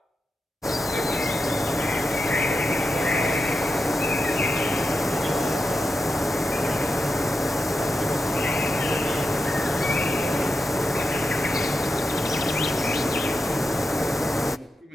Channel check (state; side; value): normal; both; correlation 0.88